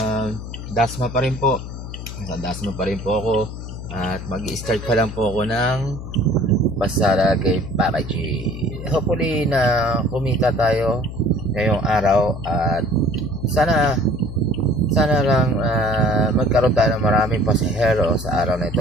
Dasma pa rin po. Sa Dasma pa rin po ako. At mag-i-start pa lang po ako ng pasara kay Papa G. Hopefully na kumita tayo ngayong araw. At sana lang magkaroon tayo ng maraming pasahero sa araw na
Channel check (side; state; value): left; noise; hum, 9 dB below the sound